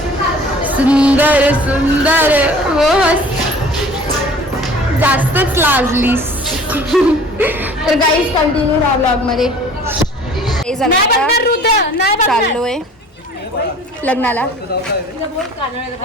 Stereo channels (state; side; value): normal; both; correlation 0.47